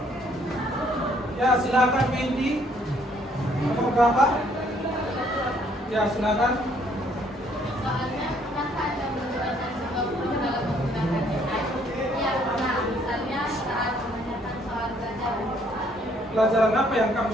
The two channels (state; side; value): normal; both; correlation 0.65